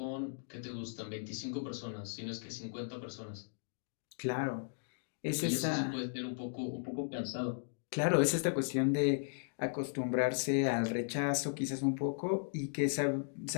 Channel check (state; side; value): silent; right; digital silence